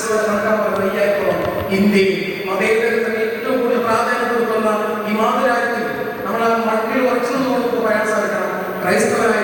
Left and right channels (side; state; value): both; identical; correlation 1.00